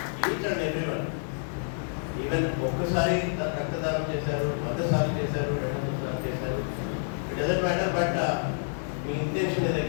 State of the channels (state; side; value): silent; right; digital silence